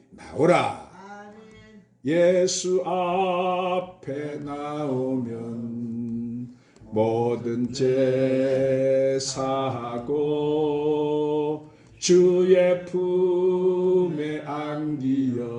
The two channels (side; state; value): both; identical; correlation 1.00